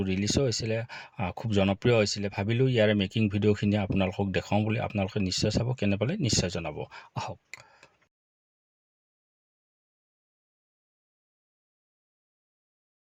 ৰিলিজো হৈছিলে, খুব জনপ্ৰিয় হৈছিলে। ভাবিলোঁ ইয়াৰে মেকিং ভিডিঅ'খিনি আপোনালোকক দেখাওঁ বুলি। আপোনালোকে নিশ্চয় চাব, কেনে পালে নিশ্চয় জনাব। আহক।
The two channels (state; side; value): identical; both; correlation 1.00